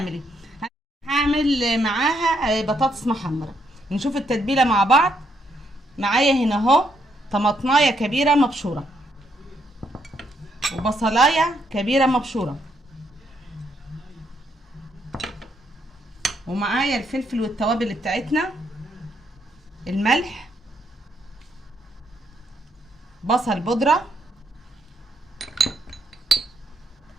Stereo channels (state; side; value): normal; both; correlation 0.75